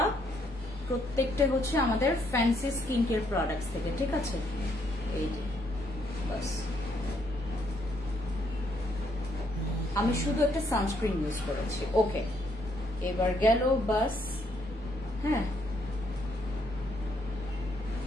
প্রত্যেকটা হচ্ছে আমাদের ফ্যান্সি স্কিন কেয়ার প্রোডাক্টস থেকে, ঠিক আছে? এই যে বাস, আমি শুধু একটা সানস্ক্রিন ইউজ করেছি। ওকে, এবার গেল বাস। হ্যাঁ,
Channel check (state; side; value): normal; both; correlation 0.72